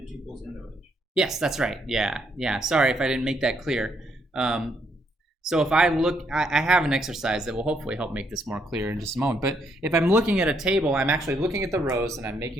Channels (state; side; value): normal; both; correlation 0.74